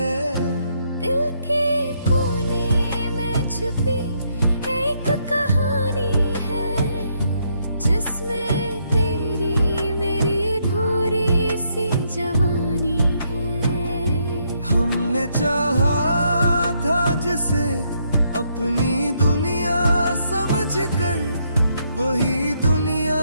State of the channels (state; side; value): inverted; both; correlation -0.74